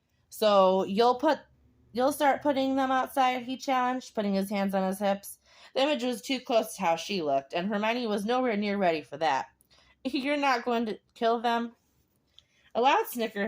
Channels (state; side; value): identical; both; correlation 1.00